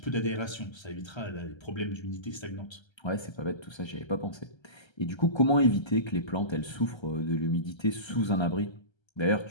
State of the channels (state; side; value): late; right; 1.3 ms